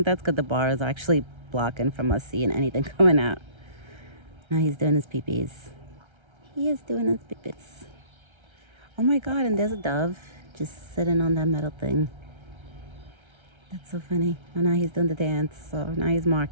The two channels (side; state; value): left; late; 1.3 ms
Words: good. The bar is actually blocking from us seeing anything coming out. Now he's doing his pee-pees. He is doing his pee-pees. Oh my God, and there's a dove just sitting on that metal thing. That's so funny. Oh, now he's doing the dance. So now he's